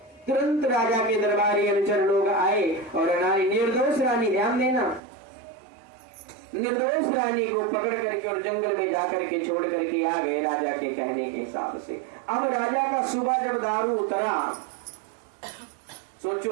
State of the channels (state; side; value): drops out; left; at 5.0 s